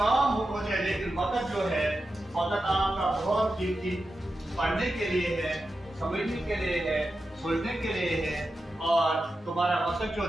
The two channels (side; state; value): both; normal; correlation 0.90